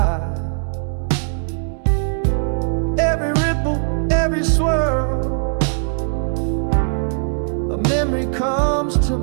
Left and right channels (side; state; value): left; silent; digital silence